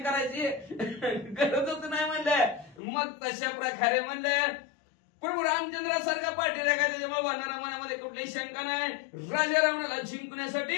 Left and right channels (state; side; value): drops out; right; at 2.8 s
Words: गरजच नाही म्हणलं. मग तशा प्रकारे म्हणलं प्रभू रामचंद्रासारखा पाठीरा काय, त्याच्यामुळे वानरा मनामध्ये कुठलीही शंका नाही. राजा रावणाला